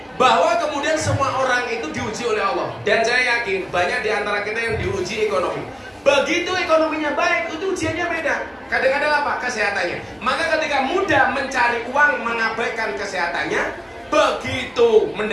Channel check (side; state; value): both; identical; correlation 1.00